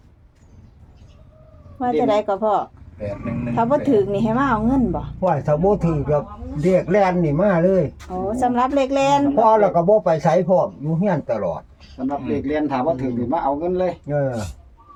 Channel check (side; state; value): both; identical; correlation 1.00